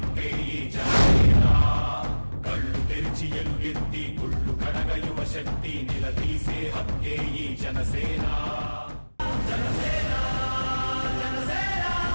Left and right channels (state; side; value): inverted; both; correlation -1.00